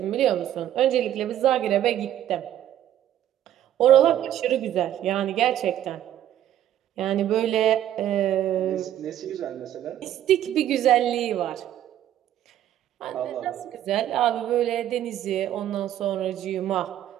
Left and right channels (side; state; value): left; quieter; 11.7 dB